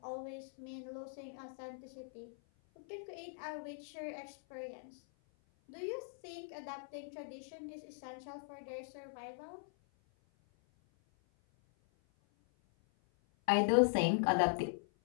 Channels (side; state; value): right; silent; 51 dB below the other